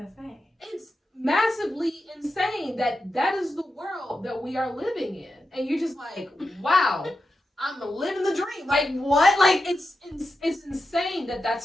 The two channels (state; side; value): normal; both; correlation 0.89